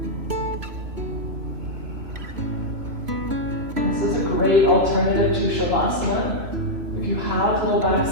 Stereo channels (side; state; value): left; late; 3.1 ms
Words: This is a great alternative to Shavasana. If you have low back